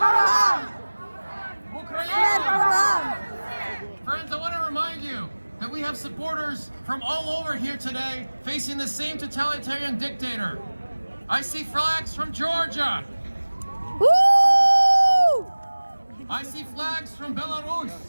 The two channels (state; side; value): inverted; both; correlation -1.00